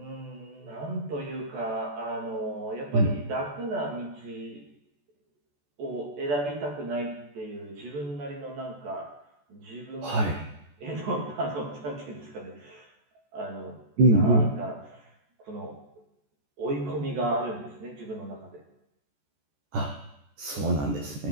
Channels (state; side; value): late; left; 14 ms